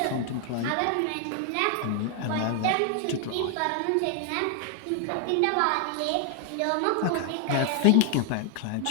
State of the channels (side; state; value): both; different; correlation 0.00